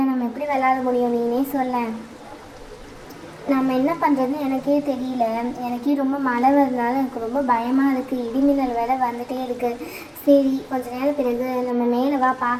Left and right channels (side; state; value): both; identical; correlation 1.00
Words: நம்ம எப்படி விளையாட முடியும்? நீனே சொல்ல. நம்ம என்ன பண்ணுறதுன்னு எனக்கே தெரியல. எனக்கே ரொம்ப மழை வருதுனால எனக்கு ரொம்ப பயமாக இருக்குது. இடிமின்னல் வேலை வந்துகிட்டே இருக்குது. சரி, கொஞ்ச நேரம் பிறகு நம்ம மேலே வா